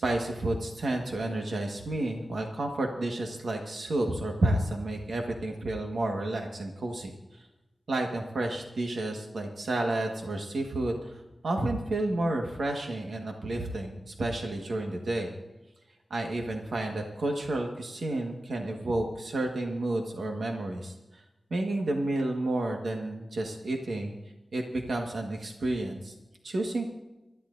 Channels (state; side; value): normal; both; correlation 0.92